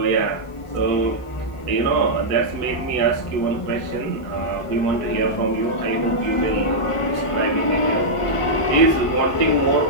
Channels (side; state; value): both; normal; correlation -0.08